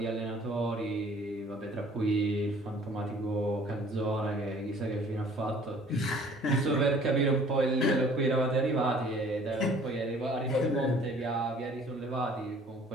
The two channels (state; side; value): normal; both; correlation 0.53